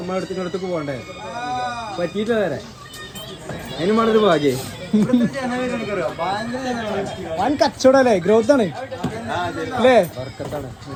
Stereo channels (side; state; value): both; identical; correlation 1.00